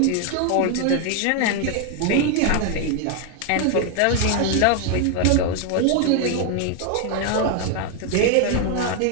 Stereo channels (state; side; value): different; both; correlation 0.00